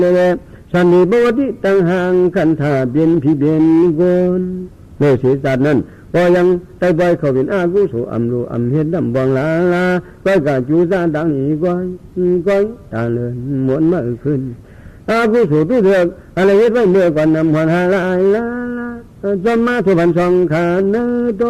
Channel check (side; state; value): both; identical; correlation 1.00